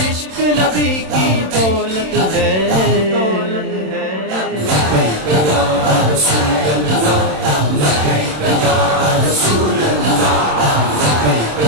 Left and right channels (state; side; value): late; left; 27 ms